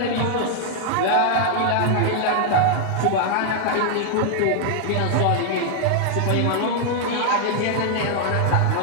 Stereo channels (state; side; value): different; both; correlation 0.00